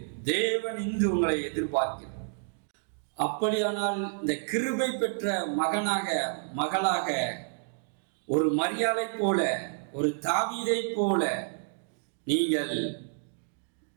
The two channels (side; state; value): left; silent; digital silence